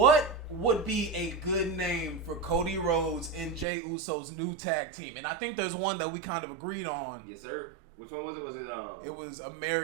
would be a good name for Cody Rhodes and Jey Uso's new tag team? And I think there's one that we kind of agreed on. Yes, sir. Which one was it? It was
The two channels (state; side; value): drops out; left; at 3.7 s